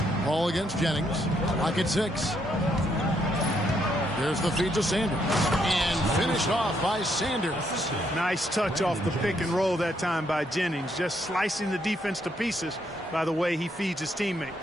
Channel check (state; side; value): normal; both; correlation 0.74